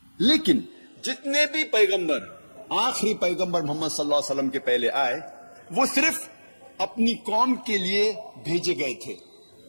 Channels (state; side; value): inverted; both; correlation -1.00